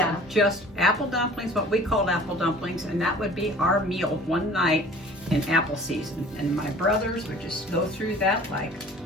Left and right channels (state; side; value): normal; both; correlation 0.47